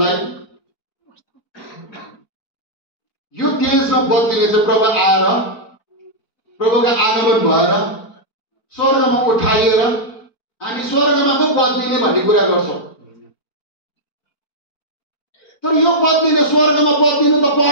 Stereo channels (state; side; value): late; right; 4.4 ms